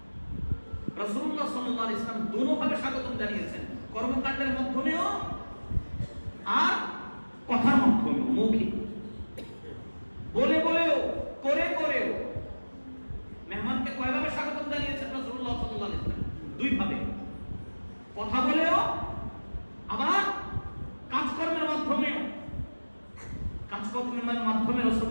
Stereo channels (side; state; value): both; inverted; correlation -1.00